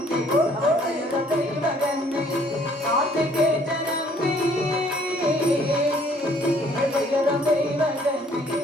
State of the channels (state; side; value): normal; both; correlation 0.60